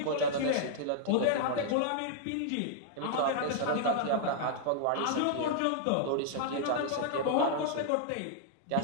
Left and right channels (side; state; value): both; different; correlation -0.01